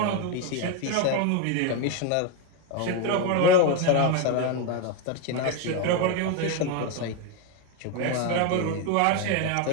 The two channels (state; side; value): different; both; correlation 0.02